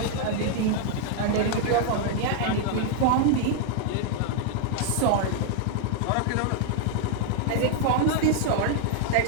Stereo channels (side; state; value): both; different; correlation 0.00